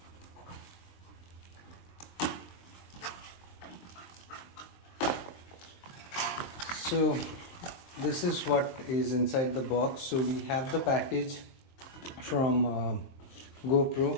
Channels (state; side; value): late; right; 23 ms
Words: So this is what is inside the box. So we have the package from